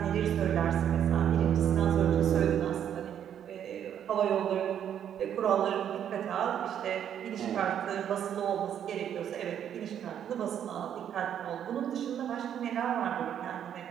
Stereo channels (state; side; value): quieter; left; 9.5 dB